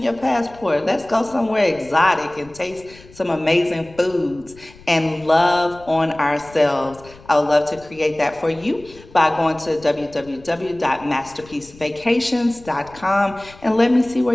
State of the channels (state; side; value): noise; left; rumble, 22 dB below the sound